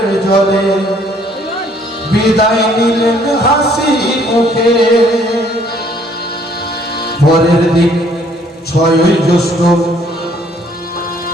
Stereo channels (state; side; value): normal; both; correlation 0.62